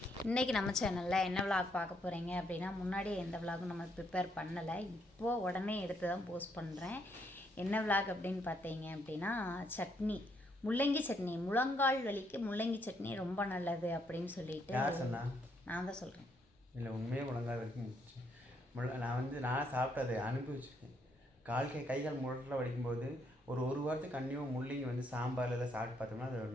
இன்றைக்கி நம்ம சேனலில் என்ன விளாக் பார்க்க போகிறீங்க அப்படின்னா, முன்னாடியே எந்த விளாகும் நம்ம ப்ரிப்பேர் பண்ணலை, இப்போது உடனே எடுத்து தான் போஸ்ட் பண்ணுறேன். என்ன விளாக் அப்படின்னு பார்த்தீங்க அப்படின்னா, சட்னி, முள்ளங்கி சட்னி. முழங்கால் வலிக்கு முள்ளங்கி சட்னி ரொம்ப நல்லது அப்படின்னு சொல்லிட்டு நான் தான் சொல்கிறேன். இல்லை, உண்மையே முழங்கால் வலிக்கு நான் சாப்பிட்டது அனுபவிச்சிருக்கேன். கைகால் முழட்டில் வலிக்கும்போது ஒரு வாரத்துக்கு கண்டிப்பாக முள்ளங்கி சாம்பாரில் எல்லாம் சாப்பிட்டு பார்த்தோம்னா அது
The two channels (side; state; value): both; normal; correlation 0.74